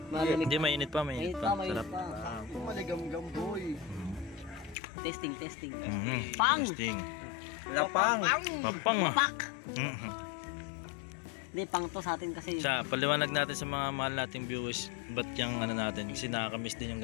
malamig. Hindi, mainit pa, Mainit mainit pa, pa. mainit Sarap. pa. Maligam-gam, boy. Testing, testing. Mhm. Pang! Testing. Lapang. Papang ah. Pak! Mhm. Hindi, pang to sa atin kasi. Siya, paliwanag natin sa mga mahal nating viewers ba't yung ano natin. Kasi nakakamiss din yung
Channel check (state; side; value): drops out; right; at 4.8 s